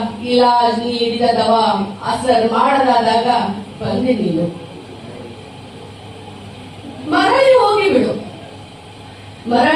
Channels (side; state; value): both; identical; correlation 1.00